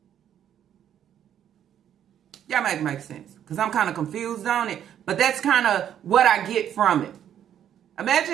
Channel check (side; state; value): left; quieter; 9.9 dB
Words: Y'all make sense. Because I'm kind of confused on it. But that's kind of what I get from it. Imagine